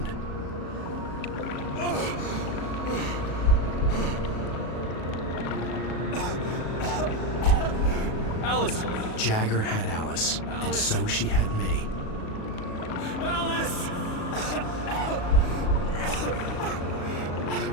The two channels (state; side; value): late; right; 37 ms